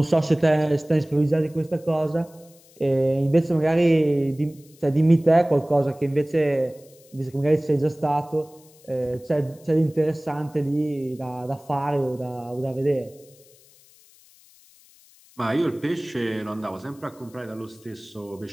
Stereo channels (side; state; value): left; noise; hiss, 27 dB below the sound